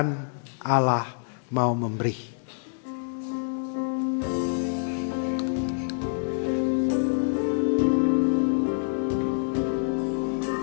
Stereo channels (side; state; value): right; silent; digital silence